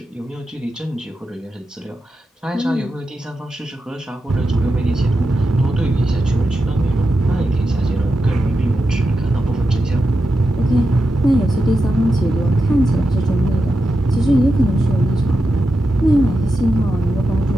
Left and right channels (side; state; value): both; normal; correlation 0.89